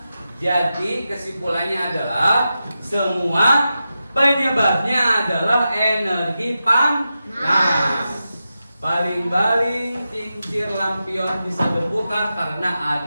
Jadi kesimpulannya adalah semua penyebabnya adalah energi panas. Baling-baling, kincir, lampion bisa berputar karena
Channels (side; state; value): both; inverted; correlation -0.90